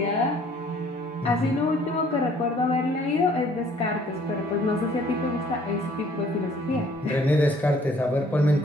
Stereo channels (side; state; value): both; normal; correlation 0.58